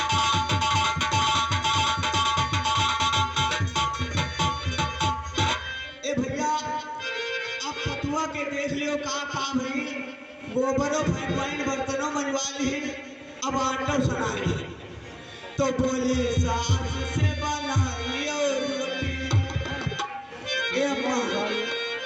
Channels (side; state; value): both; identical; correlation 1.00